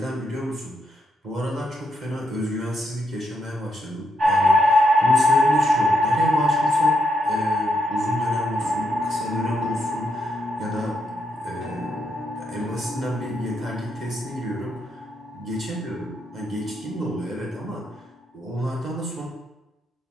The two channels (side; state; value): both; normal; correlation 0.79